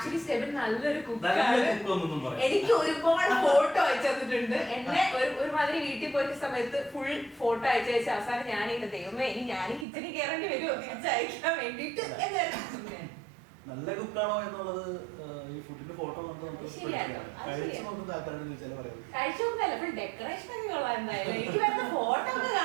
സ്റ്റെബിൻ നല്ലൊരു കുക്കാണ്. എനിക്ക് ഒരുപാട് ഫോട്ടോ അയച്ചു തന്നിട്ടുണ്ട്. എന്നെ ഒരുമാതിരി വീട്ടിൽ പോയ സമയത്ത് ഫുൾ ഫോട്ടോ അയച്ചു അവസാനം ഞാനിങ്ങനെ ദൈവമേ ഇനി ഞാനും കിച്ചണിൽ കയറേണ്ടി വരുമോ തിരിച്ചയക്കാൻ വേണ്ടിട്ട്. നല്ല കുക്കാണോ എന്നുള്ളത് ഈ ഫുഡിന്റെ ഫോട്ടോ നമുക്ക് കഴിച്ചു നോക്കുന്ന ആൾക്കാരോട് ചോദിച്ചാൽ പറയാം. കഴിച്ചു നോക്കുന്നല്ല, ഫുൾ ഡെക്കറേഷൻ ഒക്കെ കൊള്ളാം. എന്തായാലും എനിക്ക് വരുന്ന ഫോട്ടോ ഒക്കെ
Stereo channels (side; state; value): left; drops out; at 9.9 s